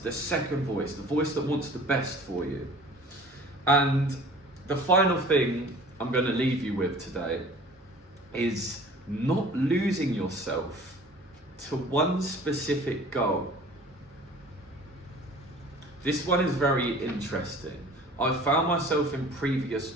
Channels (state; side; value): normal; both; correlation 0.46